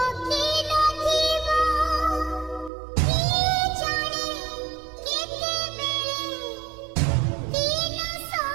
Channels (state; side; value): drops out; left; at 2.7 s